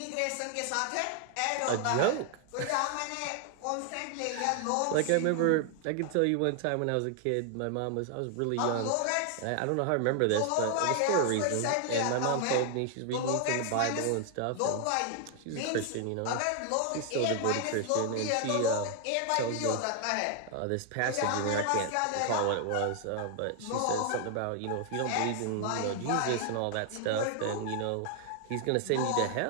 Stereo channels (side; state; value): both; different; correlation 0.00